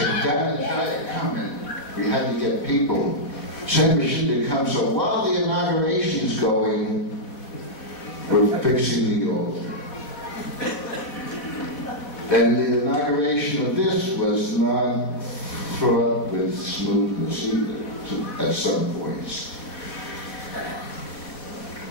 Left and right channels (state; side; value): late; right; 4.0 ms